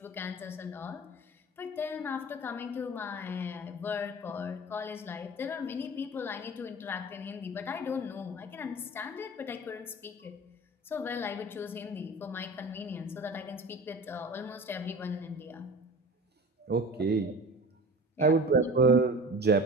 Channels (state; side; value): normal; both; correlation 0.37